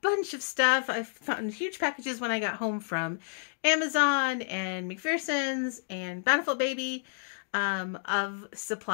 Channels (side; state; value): right; silent; digital silence